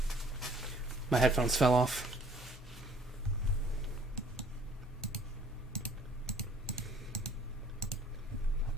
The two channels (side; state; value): both; normal; correlation 0.57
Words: My headphones fell off.